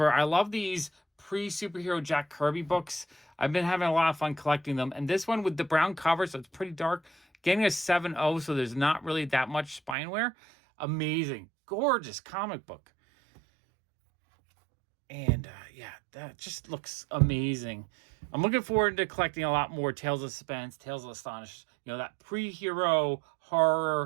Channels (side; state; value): left; drops out; at 10.0 s